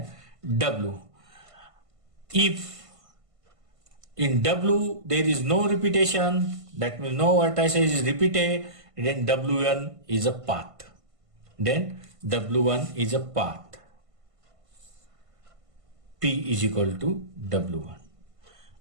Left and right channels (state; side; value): late; left; 1.5 ms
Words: W. If in W there is no repetition, that means no vertices is repeated, then W1 is a path. Then W1 is a path. P is equal to W1.